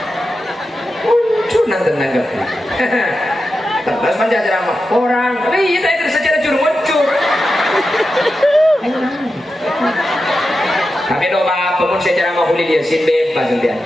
Muncul nanti nanggapi. Terus panjang ceramah orang. Tapi kita itu secara muncul. Tapi doa pemun secara mahuli dia sin bebas dia.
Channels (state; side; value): normal; both; correlation 0.90